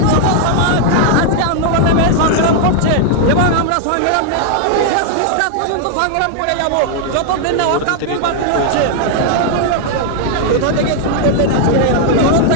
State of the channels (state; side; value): different; both; correlation 0.00